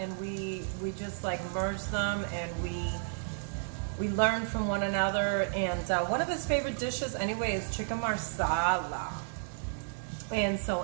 we just merged them, and we learned from one another. And one of his favorite dishes anyway is chicken marsala. And so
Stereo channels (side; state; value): left; silent; digital silence